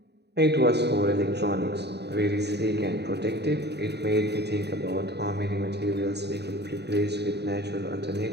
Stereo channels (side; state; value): left; late; 0.49 ms